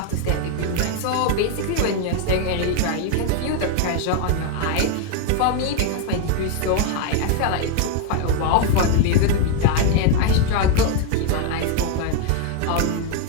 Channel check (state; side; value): different; both; correlation 0.01